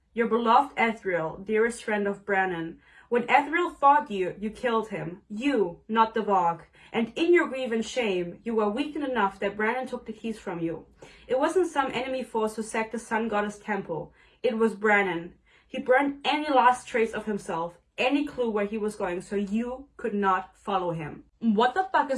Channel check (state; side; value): identical; both; correlation 1.00